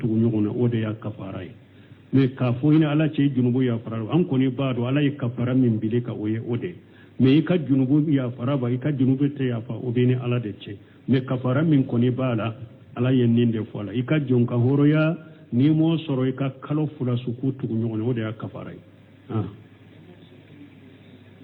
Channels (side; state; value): both; identical; correlation 1.00